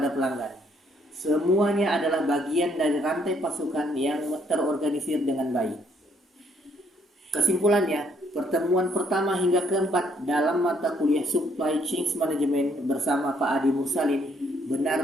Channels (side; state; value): both; normal; correlation 0.68